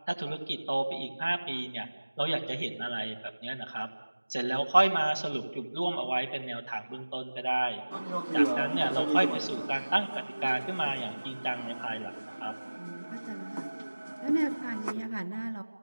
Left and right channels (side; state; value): both; inverted; correlation -1.00